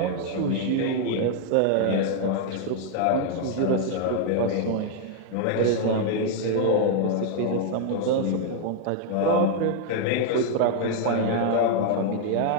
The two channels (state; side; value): different; both; correlation 0.00